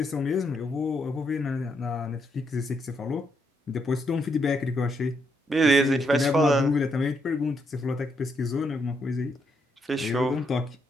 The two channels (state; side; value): normal; both; correlation 0.78